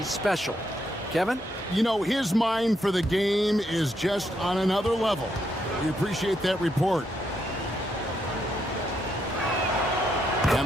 special. Kevin? You know, his mind for the game is just on another level. We appreciate that report.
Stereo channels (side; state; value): both; normal; correlation 0.78